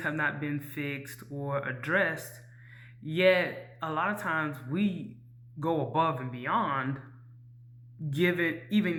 have not been fixed or addressed, yet a lot of times we go above and beyond, given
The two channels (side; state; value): both; identical; correlation 1.00